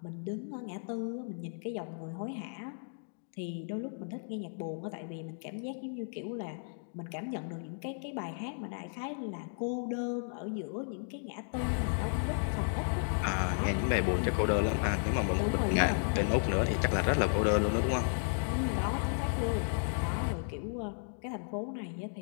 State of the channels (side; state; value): right; silent; digital silence